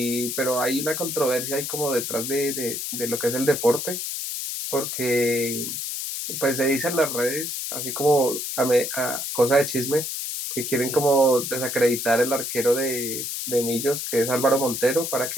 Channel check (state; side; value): noise; left; hiss, 4 dB below the sound